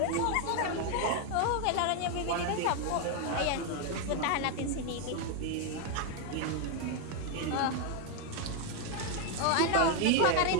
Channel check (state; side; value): different; both; correlation 0.01